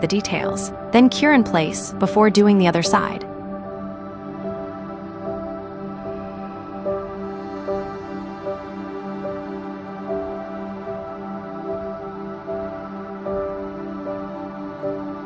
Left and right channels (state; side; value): identical; both; correlation 1.00